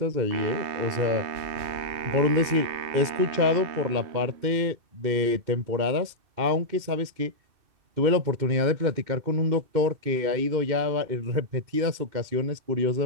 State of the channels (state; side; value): late; left; 2.6 ms